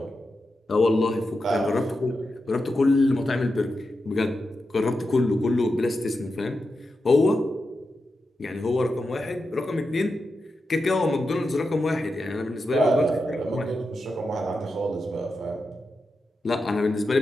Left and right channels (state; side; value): normal; both; correlation 0.89